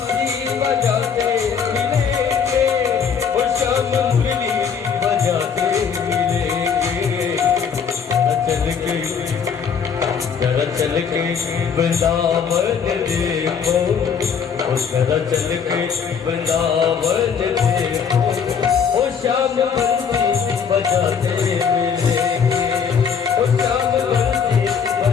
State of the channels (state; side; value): quieter; right; 6.7 dB